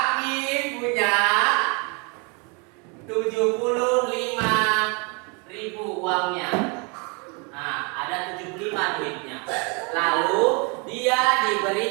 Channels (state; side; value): quieter; left; 32.6 dB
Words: punya 75.000 uangnya. Nah, ada 75 duitnya. Lalu dia